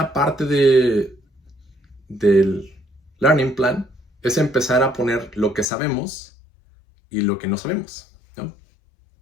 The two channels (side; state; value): right; drops out; at 5.7 s